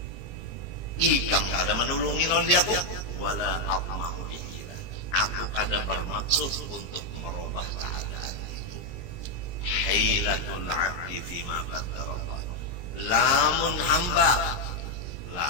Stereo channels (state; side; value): late; right; 22 ms